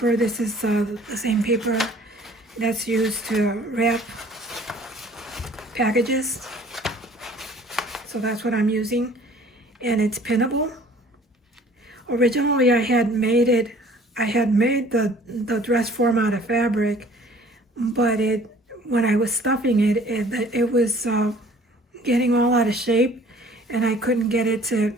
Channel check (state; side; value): normal; both; correlation 0.52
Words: this is the same paper that's used to wrap packages. So that's what I'm using. And it's pinnable. Originally I had made the dress form out of fabric, but when I was stuffing it was getting all out of shape, and I couldn't get it to